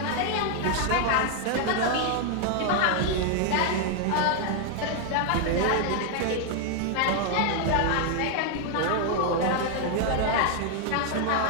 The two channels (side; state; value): both; different; correlation 0.00